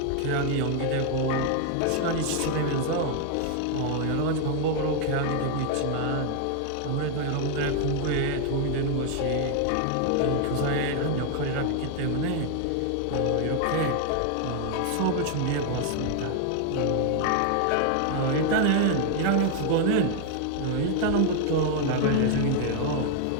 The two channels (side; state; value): both; different; correlation 0.00